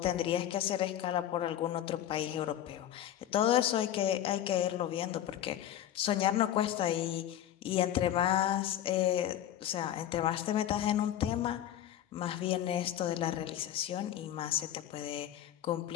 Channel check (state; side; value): quieter; right; 11.5 dB